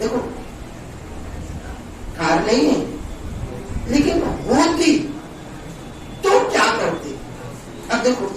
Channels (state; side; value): identical; both; correlation 1.00